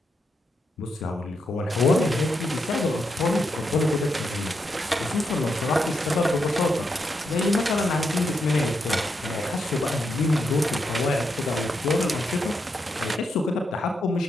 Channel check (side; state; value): both; normal; correlation 0.82